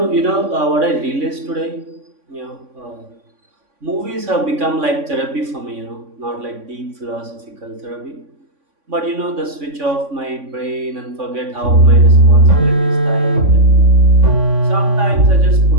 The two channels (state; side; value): late; left; 3.5 ms